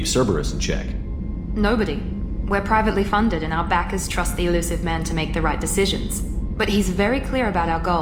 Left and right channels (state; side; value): identical; both; correlation 1.00